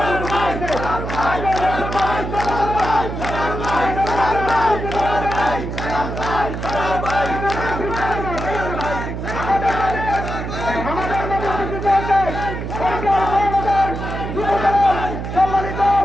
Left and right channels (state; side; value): noise; right; hum, 5 dB below the sound